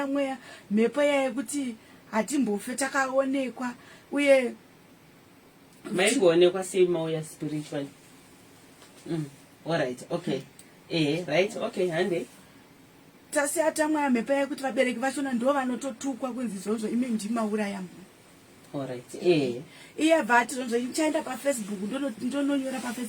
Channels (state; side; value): identical; both; correlation 1.00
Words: mweya mhepo yayekuti hatimbofe takaonekwa uye maigoonekwa sei mauya spiritually. Alright. Okay. Right. Okay. Hande tasiya tamweya mhepo yayekuti vabereki vachona ndo vanototukwa kunzi izvozvo imi ndimauraya munhu. Alright. Iye bvati zvonzo ichaenda paFacebook ndononyora